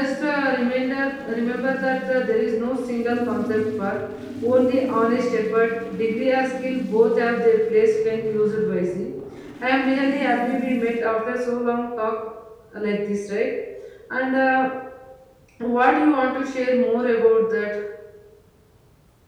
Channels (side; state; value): both; identical; correlation 1.00